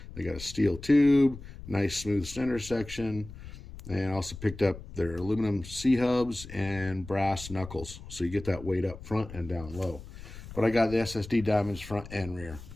They got a steel tube, nice smooth center section, and I also picked up their aluminum C-hubs and brass knuckles. So you get that weight up front and down low. But I got the SSD diamonds front and rear.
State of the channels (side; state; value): left; noise; rumble, 14 dB below the sound